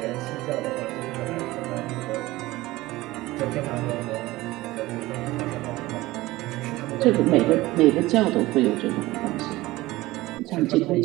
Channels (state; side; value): quieter; left; 18.7 dB